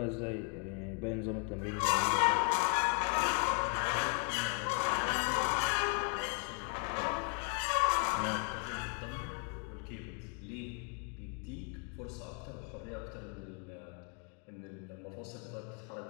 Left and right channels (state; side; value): quieter; right; 40.0 dB